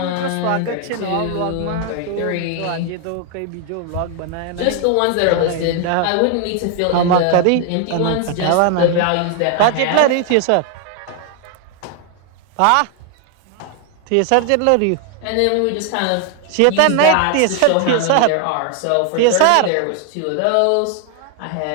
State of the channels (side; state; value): both; different; correlation 0.00